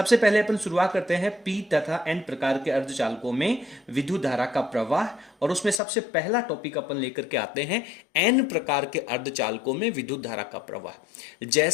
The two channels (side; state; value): right; drops out; at 5.8 s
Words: पहले अपन शुरुआत करते हैं पी तथा एन प्रकार के अर्धचालकों में विद्युत धारा का प्रवाह, और उसमें सबसे पहला टॉपिक अपन लेकर के आते हैं एन प्रकार के अर्धचालकों में विद्युत धारा का प्रवाह।